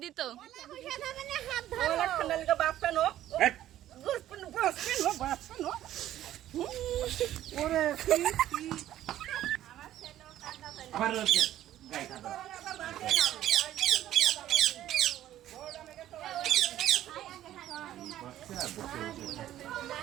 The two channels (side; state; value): left; quieter; 12.8 dB